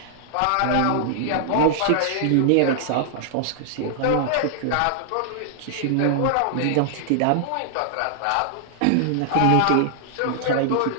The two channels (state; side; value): different; both; correlation -0.01